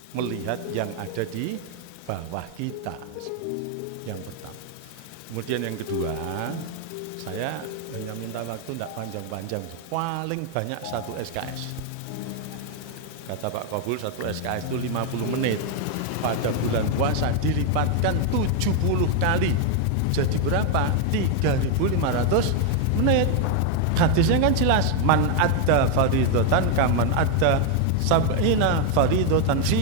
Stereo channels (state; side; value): different; both; correlation 0.01